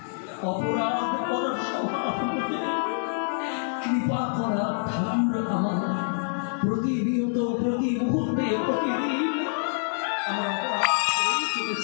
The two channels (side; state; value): right; silent; digital silence